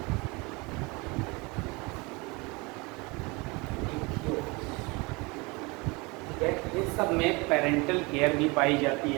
ठीक है। इन सब में पेरेंटल केयर भी पाई जाती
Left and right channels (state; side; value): quieter; left; 26.4 dB